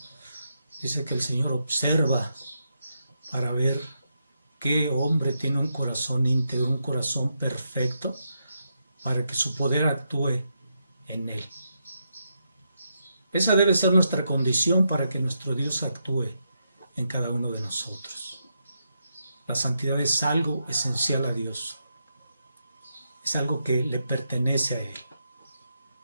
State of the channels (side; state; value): both; inverted; correlation -0.83